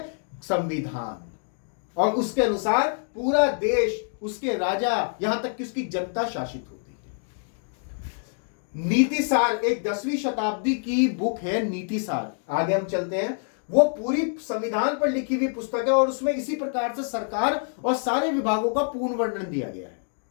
संविधान। और उसके अनुसार पूरा देश, उसके राजा, यहां तक कि उसकी जनता शासित होती है। नीतिसार एक 10वीं शताब्दी की बुक है, नीतिसार। आगे हम चलते हैं। वो पूरी संविधान पर लिखी हुई पुस्तक है और उसमें इसी प्रकार से सरकार और सारे विभागों का पूर्ण वर्णन दिया गया है।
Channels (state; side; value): silent; right; 61 dB below the other